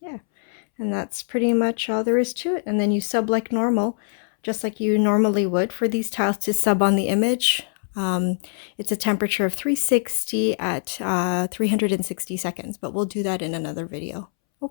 and that's pretty much all there is to it. And then you sub like normal, just like you normally would for these tiles to sub on the image. It's a temperature of 360 at 360 seconds, but we'll do that in another video.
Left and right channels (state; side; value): silent; right; 63 dB below the other